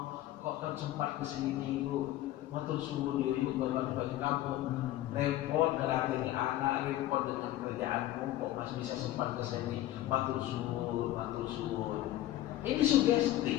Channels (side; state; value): right; quieter; 14.5 dB